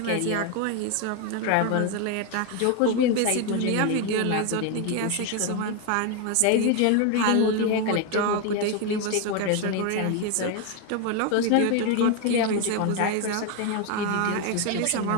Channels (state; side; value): different; both; correlation 0.01